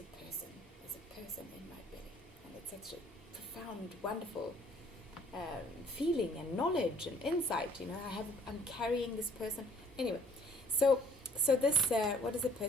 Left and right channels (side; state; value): both; normal; correlation 0.58